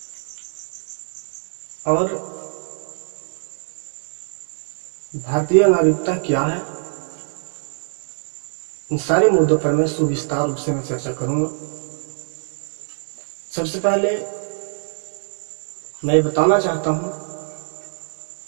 और भारतीय नागरिकता क्या है। इन सारे मुद्दों पर मैं सुविस्तार रूप से मैं चर्चा करूंगा। सबसे पहले मैं बताना चाहता हूं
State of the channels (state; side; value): silent; left; digital silence